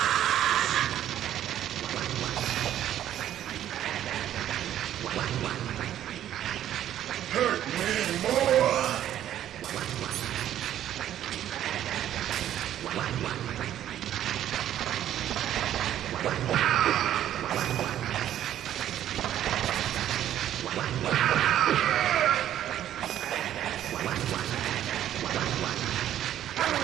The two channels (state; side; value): quieter; left; 11.5 dB